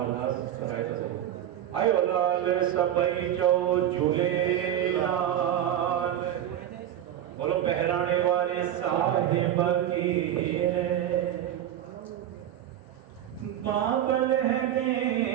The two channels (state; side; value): quieter; left; 11.2 dB